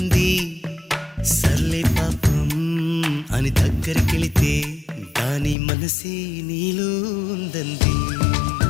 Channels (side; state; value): right; drops out; at 5.6 s